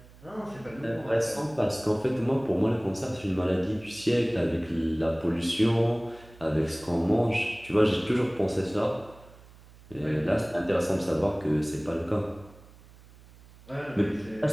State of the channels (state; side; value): noise; right; hum, 23 dB below the sound